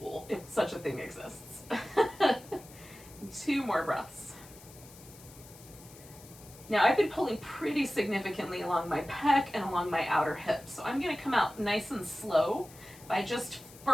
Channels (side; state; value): left; noise; hiss, 20 dB below the sound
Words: if such a thing exists. 2 more breaths. Now I've been pulling pretty significantly along my pec and along my outer hip. So I'm going to come out nice and slow by just